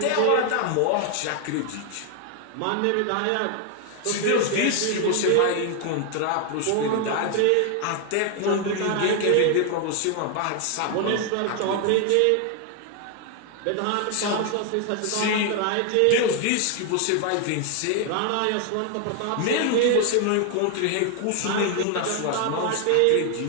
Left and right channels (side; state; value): both; different; correlation 0.01